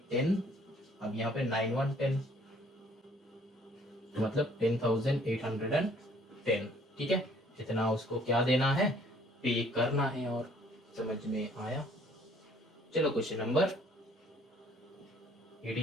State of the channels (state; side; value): normal; both; correlation 0.59